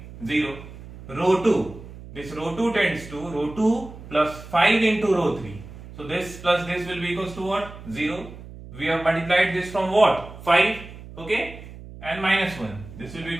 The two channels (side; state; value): right; noise; hum, 15 dB below the sound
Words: 0. Row 2. This row 2 tends to row 2 plus 5 into row 3. So this plus this will be equals to what? 0. We have multiplied this from what? 5. Okay. And minus 1. This will be